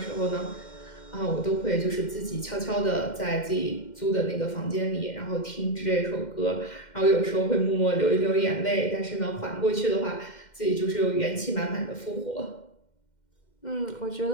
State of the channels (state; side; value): late; right; 2.1 ms